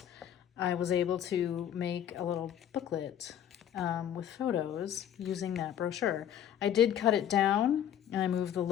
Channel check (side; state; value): right; quieter; 10.1 dB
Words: I was able to make a little booklet with photos using that brochure. I did cut it down and I moved the